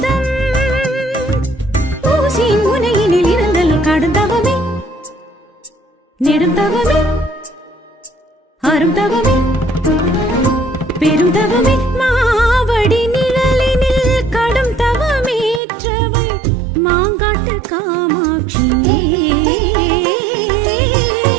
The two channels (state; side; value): drops out; left; at 15.6 s